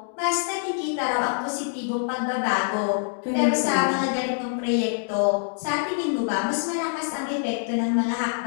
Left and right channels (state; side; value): silent; right; digital silence